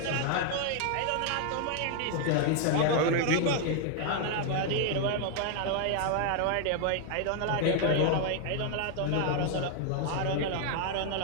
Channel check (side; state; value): both; different; correlation 0.00